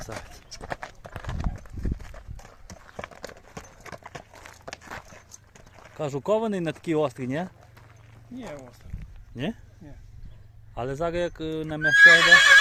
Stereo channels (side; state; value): both; identical; correlation 1.00